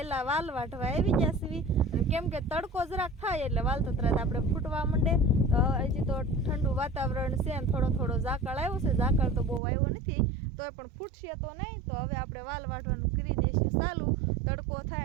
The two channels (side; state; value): left; drops out; at 9.6 s